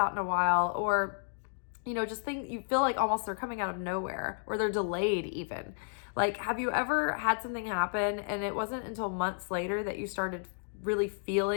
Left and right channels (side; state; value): right; silent; digital silence